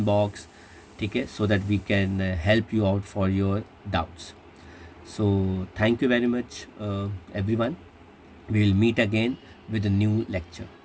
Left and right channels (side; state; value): both; identical; correlation 1.00